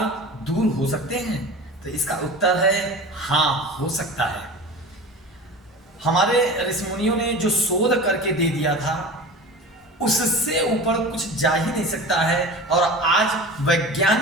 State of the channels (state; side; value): normal; both; correlation 0.34